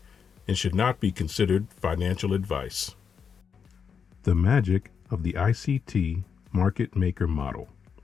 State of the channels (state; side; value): quieter; right; 6.5 dB